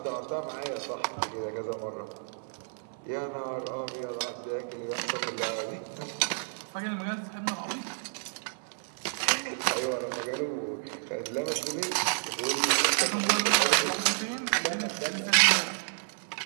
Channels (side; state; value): left; silent; 57 dB below the other